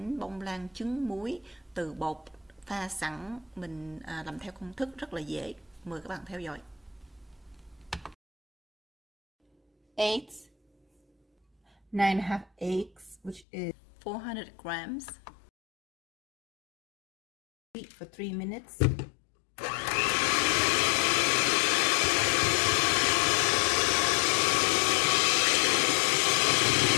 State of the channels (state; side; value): drops out; right; at 13.5 s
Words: bông lan trứng muối từ bột pha sẵn. Mình làm theo công thức rất là dễ. Mời các bạn theo dõi. Eggs, 9.5 eggs, which is 400 grams. Heat for 3 minutes.